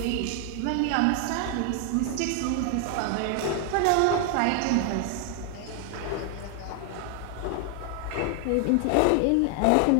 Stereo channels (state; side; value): different; both; correlation 0.00